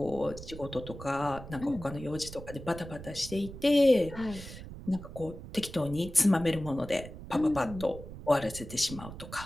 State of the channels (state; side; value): noise; right; rumble, 13 dB below the sound